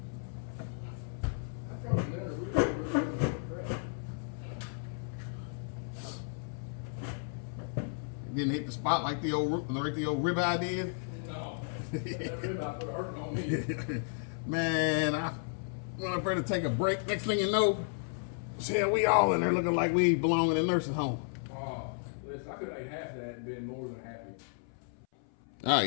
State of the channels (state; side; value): silent; right; 55 dB below the other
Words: Didn't hit the spot like the old ribeye did. No, that ribeye put a hurting on me. Man, I went up there to take a break. Next thing you know, shit, we all in there looking like we belong in a nursing home. Oh, listen, I could have ate half of that and been more than happy. All